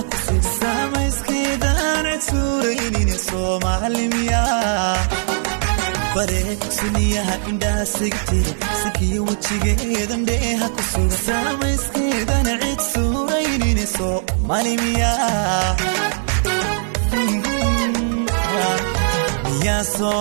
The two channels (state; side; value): silent; left; 58 dB below the other